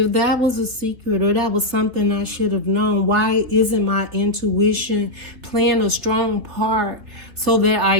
that was a secret or that was something I should have known, why isn't my intuition playing a strong part so that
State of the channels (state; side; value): late; left; 3.2 ms